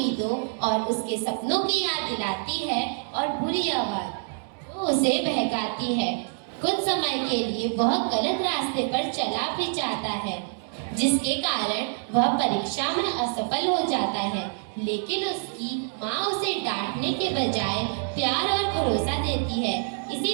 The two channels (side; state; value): left; silent; digital silence